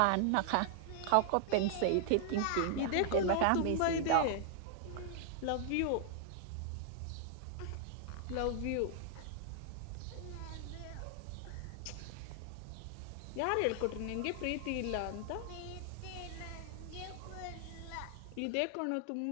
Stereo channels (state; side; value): different; both; correlation -0.01